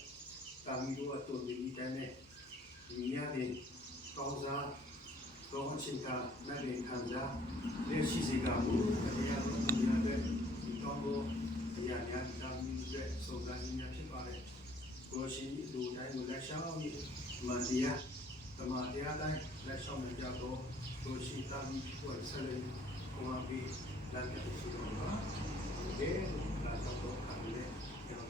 ဒါမီးတို့အတူတူဒီတိုင်းနဲ့ဒီရတဲ့ကောင်းစားကောင်းချင်တာနဲ့လည်းခံစားလက်ရှိစီကကိုတရားတော်မူရတဲ့ဒီကောင်းတော်တရားများဒါမီးရဲ့စုံစမ်းခြင်းဖြစ်ပါတယ်ကိုရှင်လူတိုင်းကိုလက်ရှောင်းပြီးမတရားဓမ္မတရားတိုင်းလက်ရှောင်းနေကြတော့ကိုရှင်သာမီးကိုဆက်လက်ကိုမပြီးလက်ပြည့်စုံတော့ပါဒီလာတော့ခံလေကျွန်တော်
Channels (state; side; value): normal; both; correlation 0.59